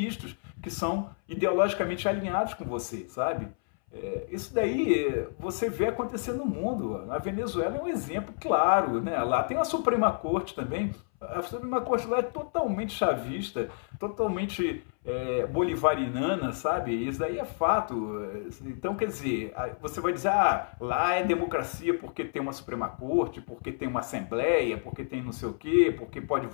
que são ideologicamente alinhados com você, sabe? Isso daí você vê acontecer no mundo. A Venezuela é um exemplo claro, né? Lá tem a Suprema Corte também. A Suprema Corte lá é totalmente chavista, totalmente bolivariana, sabe? Isso daí é fato. Então, quer dizer, você vai dizer, lá é democracia porque tem uma Suprema Corte, porque tem uma Assembleia, porque tem não sei o quê, porque pode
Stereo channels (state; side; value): silent; right; 58 dB below the other